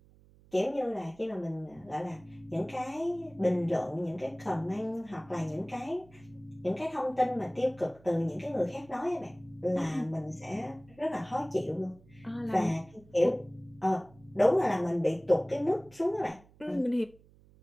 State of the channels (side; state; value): right; noise; hum, 26 dB below the sound